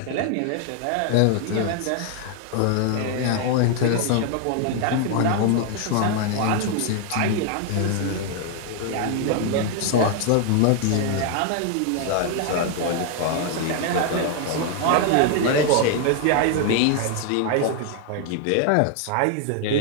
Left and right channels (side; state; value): both; different; correlation 0.00